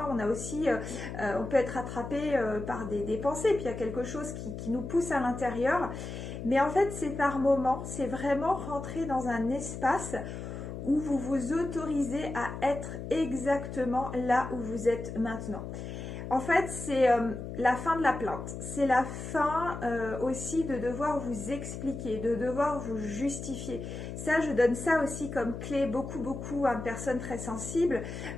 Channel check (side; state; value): left; noise; hum, 8 dB below the sound